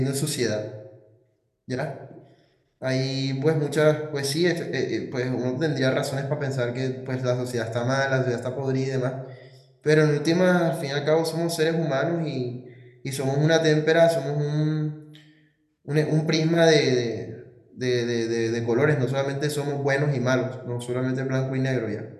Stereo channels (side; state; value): both; identical; correlation 1.00